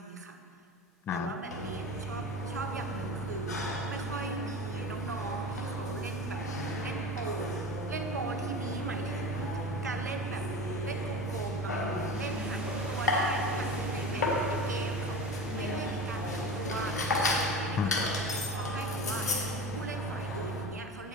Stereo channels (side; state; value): both; normal; correlation 0.31